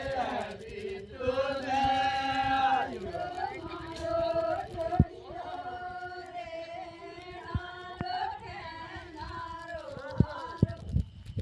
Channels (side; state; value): both; identical; correlation 1.00